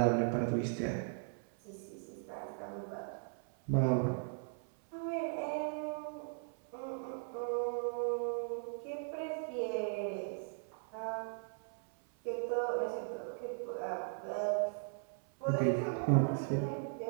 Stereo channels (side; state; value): left; silent; 53 dB below the other